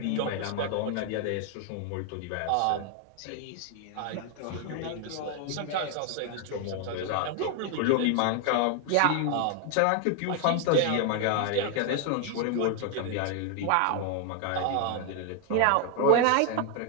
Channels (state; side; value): different; both; correlation 0.00